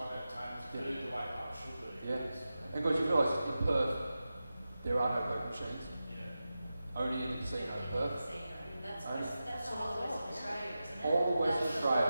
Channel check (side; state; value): both; inverted; correlation -0.93